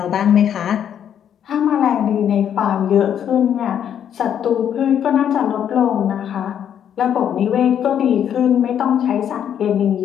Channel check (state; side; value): quieter; right; 9.2 dB